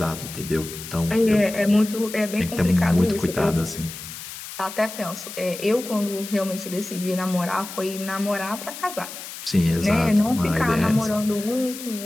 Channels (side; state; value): left; noise; hiss, 11 dB below the sound